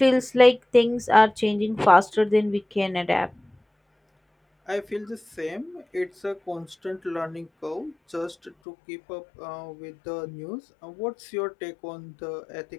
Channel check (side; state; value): right; drops out; at 8.6 s